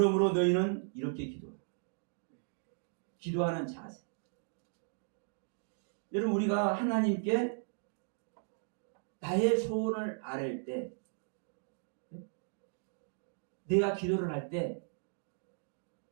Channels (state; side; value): silent; left; digital silence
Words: 너희는 이렇게 기도하라. 기도하는 자세. 여러분 우리가 하나님께 나의 소원을 아뢰을 때, 내가 기도를 할 때